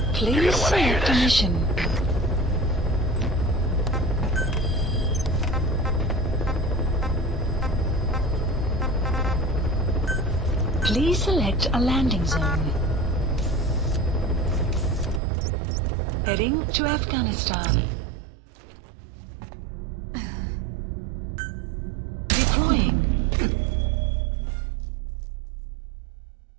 Please gonna want to hear select a this. mission. Please select a landing zone. Heading to Afghanistan. Deploying.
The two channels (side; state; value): left; drops out; at 15.2 s